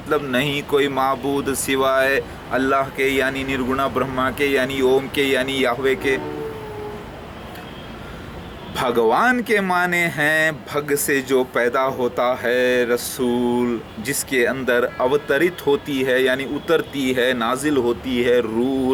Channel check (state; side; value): identical; both; correlation 1.00